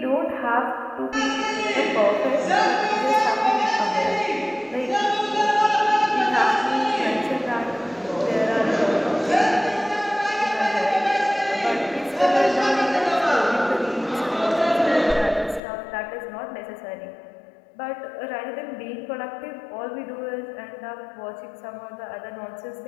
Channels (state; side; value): drops out; right; at 15.6 s